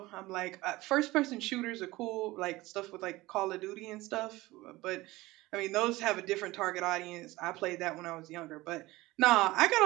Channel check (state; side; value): quieter; left; 19.5 dB